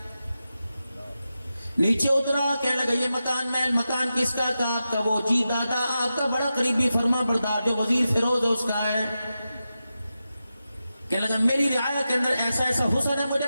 نیچے اترا, کہنے لگا یہ مکان محل مکان کس کا تھا؟ آپ کا. وہ جی دادا آپ کا بڑا قریبی فرما بردار جو وزیر فیروز ہے اس کا ہے. کہنے لگا میری رعایا کے اندر ایسا ایسا حسن ہے مجھے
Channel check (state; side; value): inverted; both; correlation -0.91